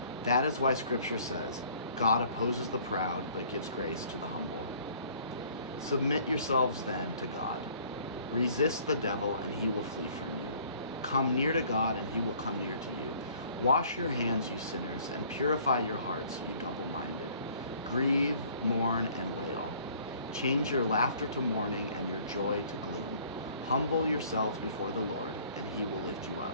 That is why Scripture says, God opposes the proud but gives grace to the humble. Submit yourselves then to God. Resist the devil and he will flee from you. Come near to God and He will come near to you. Wash your hands, you sinners, and purify your hearts, you double-minded. Grieve, mourn, and wail. Change your laughter to mourning and your joy to gloom. Humble yourselves before the Lord, and He will lift you up.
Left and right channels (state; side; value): inverted; both; correlation -0.55